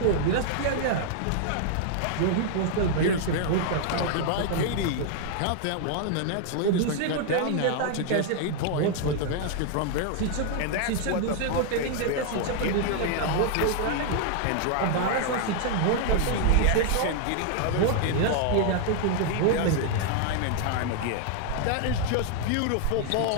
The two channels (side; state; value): both; different; correlation 0.00